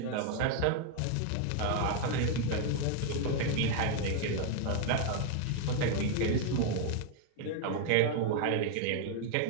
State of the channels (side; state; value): both; different; correlation 0.00